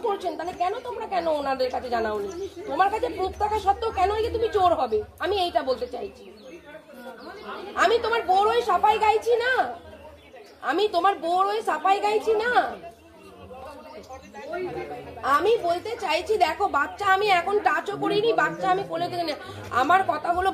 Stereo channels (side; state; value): both; identical; correlation 1.00